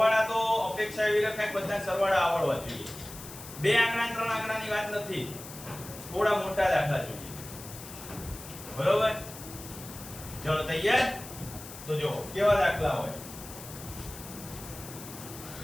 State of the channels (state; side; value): noise; left; hiss, 14 dB below the sound